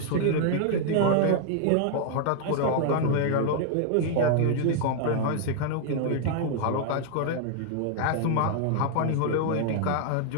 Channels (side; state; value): both; different; correlation 0.00